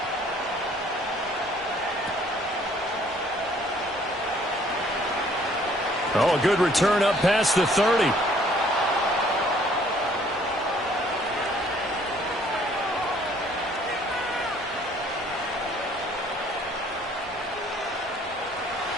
Oh, a good return up past the 30.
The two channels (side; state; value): both; normal; correlation 0.59